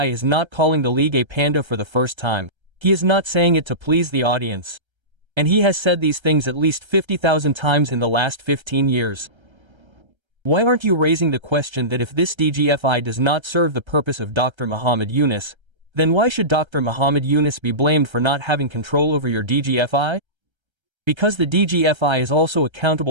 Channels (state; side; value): late; left; 1.3 ms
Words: is not calling the league a panda for the first time. He is not saying it to please the audience. And he has said these things at least 50,000 times in the last 15 years. Why aren't you raising the question that if this DGFI does not serve the purpose of Dr. Muhammad Yunus, then why should Dr. Muhammad Yunus be blamed for not having control over your DGFI? Because the DGFI is also